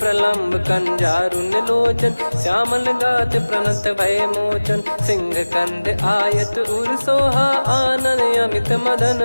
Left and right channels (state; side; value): inverted; both; correlation -1.00